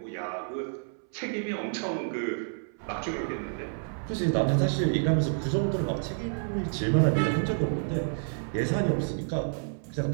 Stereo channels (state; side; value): silent; left; 58 dB below the other